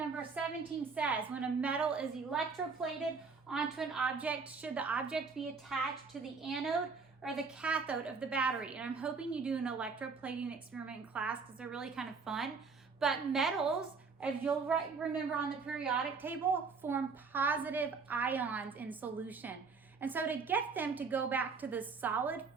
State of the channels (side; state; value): left; quieter; 4.9 dB